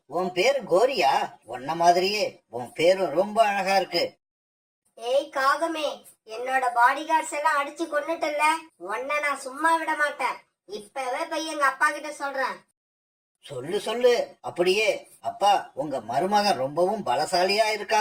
உன் பேரு கோரியா? உன்ன மாதிரியே உன் பேரும் ரொம்ப அழகா இருக்கு. ஏய் காகமே, என்னோட பாடி கார்ட்ஸ் எல்லாம் அடிச்சு கொன்னுட்டல, உன்னை நான் சும்மா விட மாட்டேன். இப்பவே போய் எங்க அப்பா கிட்ட சொல்றேன். சொல்லு சொல்லு. அப்படியே அப்பா, உங்க மருமகன் ரொம்பவும் பலசாலியா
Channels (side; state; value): both; identical; correlation 1.00